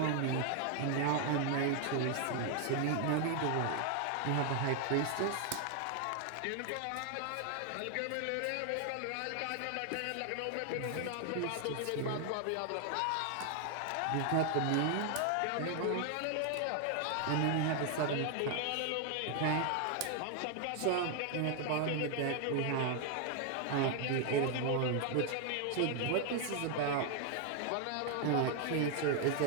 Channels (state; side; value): different; both; correlation 0.00